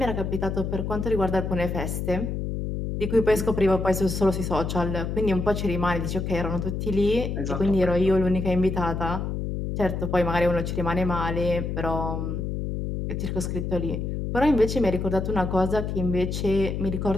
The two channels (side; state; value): left; noise; hum, 3 dB below the sound